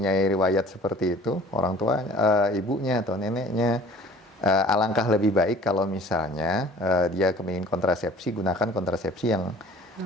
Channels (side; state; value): both; normal; correlation 0.49